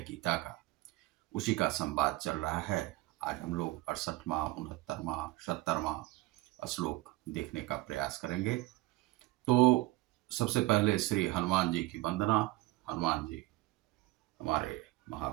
गीता का, उसी का संवाद चल रहा है। आज हम लोग 68वां, 69वां, 70वां श्लोक देखने का प्रयास करेंगे। तो सबसे पहले श्री हनुमान जी की वंदना। हनुमान जी हमारे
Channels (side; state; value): left; quieter; 19.1 dB